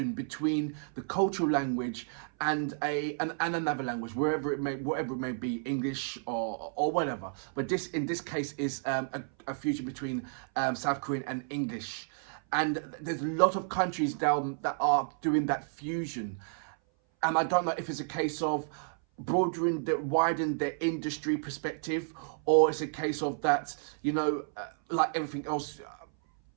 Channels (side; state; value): left; silent; 57 dB below the other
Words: between the cultural language and another language, whatever it may be, English or whatever. But this, in this case, is a fusion between South Korean and English. And there's a lot of countries now that are doing that fusion. And I don't know if it's a case of widen their industry perspective, or it's a case of that, you know, like everything else,